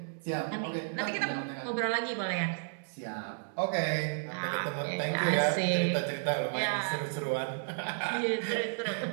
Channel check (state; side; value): silent; left; digital silence